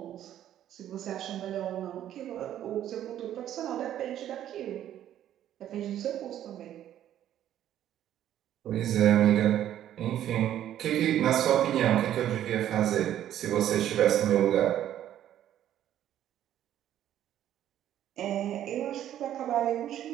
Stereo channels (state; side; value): quieter; left; 11.5 dB